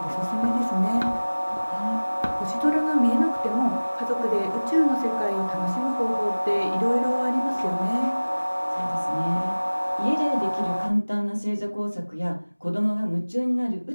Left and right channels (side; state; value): both; inverted; correlation -1.00